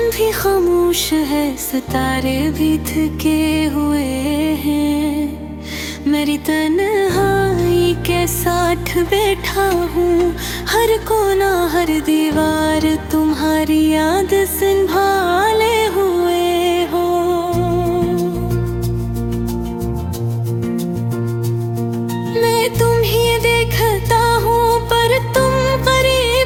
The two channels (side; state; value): both; identical; correlation 1.00